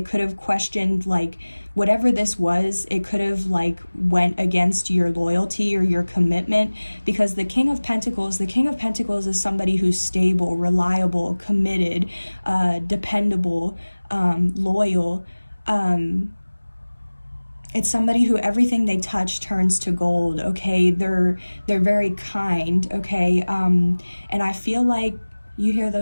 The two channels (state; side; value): inverted; both; correlation -1.00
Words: questioned, like, whatever this was, it could have like went against your loyalty or your commitment, because the King of Pentacles is somebody who's stable, reliable, committed, dependable, loyal, it's somebody who everything they touch turns to gold, okay? They're very kind, okay? And I feel like, you hear